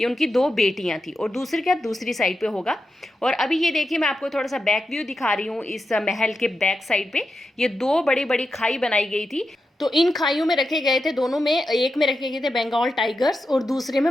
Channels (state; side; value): normal; both; correlation 0.89